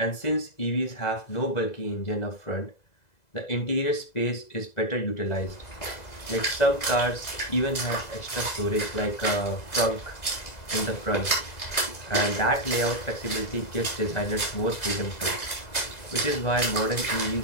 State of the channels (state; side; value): late; right; 2.0 ms